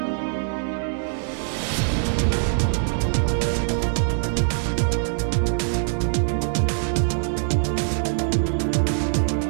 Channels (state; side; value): silent; left; digital silence